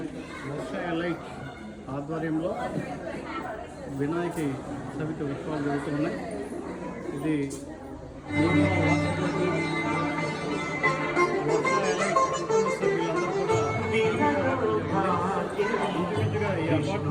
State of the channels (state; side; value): identical; both; correlation 1.00